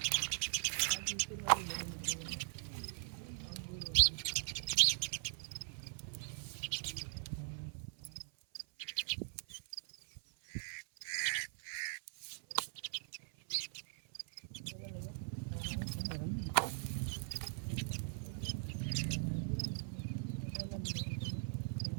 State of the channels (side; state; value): left; silent; 51 dB below the other